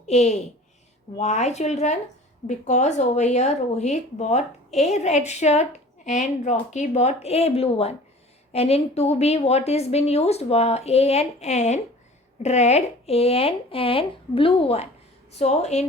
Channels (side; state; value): both; normal; correlation 0.44